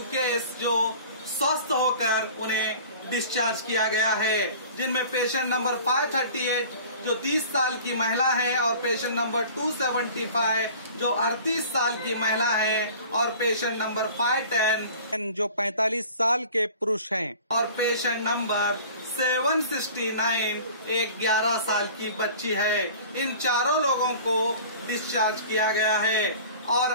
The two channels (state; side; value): inverted; both; correlation -0.44